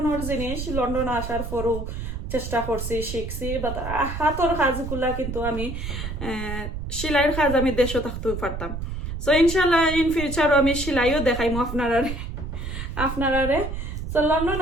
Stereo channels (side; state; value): right; noise; rumble, 6 dB below the sound